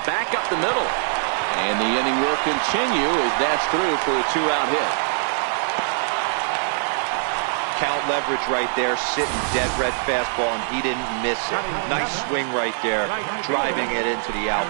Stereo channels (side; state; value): left; silent; digital silence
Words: Back up the middle. And the inning will continue as that's through for a 2-out hit. count leverage right there, sitting dead red fastball, and he didn't miss it. Nice swing right there, driving it into the